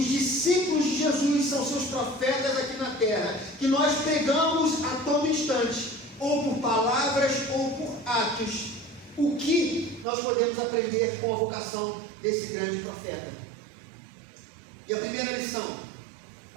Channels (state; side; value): drops out; left; at 10.1 s